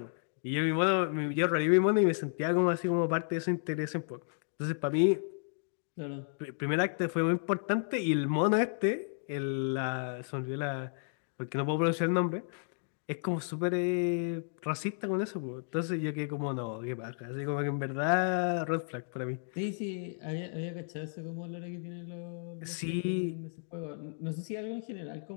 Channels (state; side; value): silent; right; digital silence